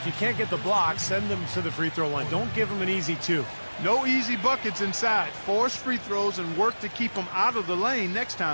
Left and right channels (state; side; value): inverted; both; correlation -1.00